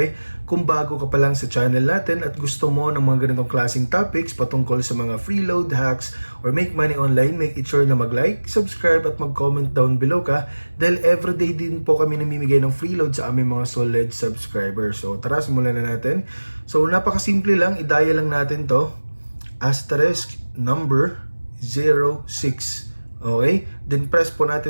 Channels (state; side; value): inverted; both; correlation -1.00